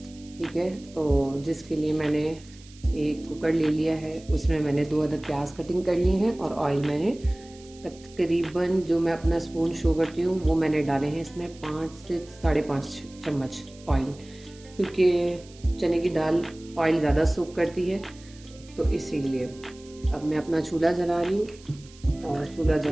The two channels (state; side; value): noise; right; hiss, 23 dB below the sound